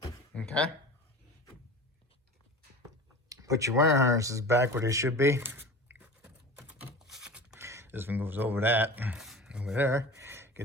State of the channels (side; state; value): both; normal; correlation 0.35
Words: Okay. Put your wire harnesses back where they should be. This one goes over that, over there.